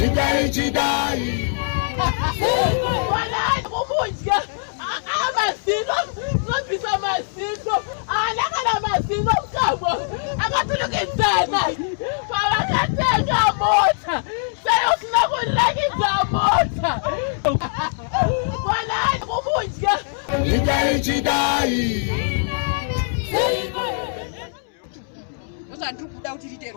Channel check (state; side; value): silent; right; 64 dB below the other